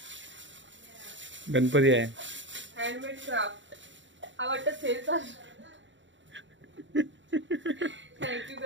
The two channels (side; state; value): left; late; 0.54 ms